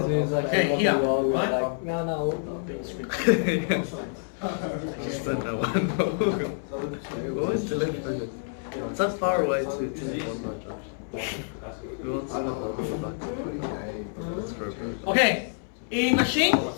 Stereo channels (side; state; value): right; silent; 59 dB below the other